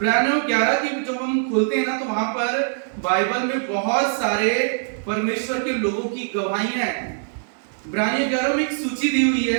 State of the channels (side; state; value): left; silent; 64 dB below the other